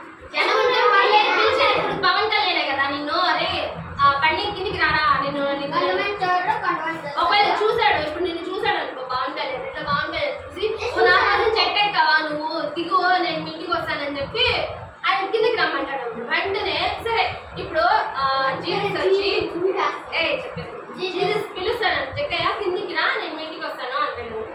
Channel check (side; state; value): both; identical; correlation 1.00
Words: వెంటనే సరే ఇప్పుడు జీసస్ వచ్చి జీసస్ పిలుస్తాను జక్కయ్య కిందికి రా నేను మీ ఇంటికి వస్తాను అంటాడు